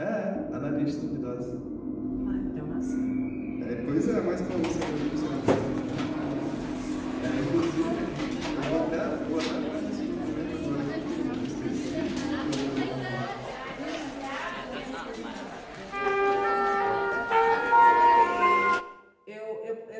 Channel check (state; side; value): identical; both; correlation 1.00